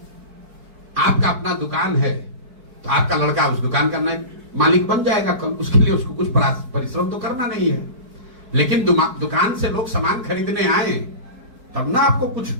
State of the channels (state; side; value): late; left; 4.6 ms